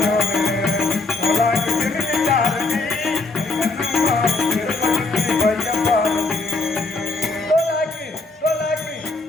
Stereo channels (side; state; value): right; quieter; 3.4 dB